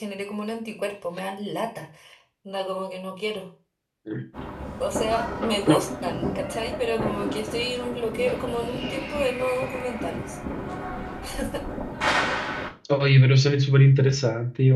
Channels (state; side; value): identical; both; correlation 1.00